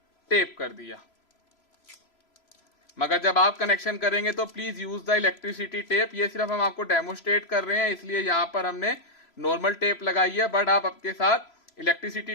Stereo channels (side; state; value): right; late; 3.0 ms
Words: टेप कर दिया। मगर जब आप कनेक्शन करेंगे तो please use the electricity tape. ये सिर्फ हम आपको डेमोस्ट्रेट कर रहे हैं, इसलिए यहां पर हमने नॉर्मल टेप लगाई है, बट आप आपके साथ इलेक्ट्रिसिटी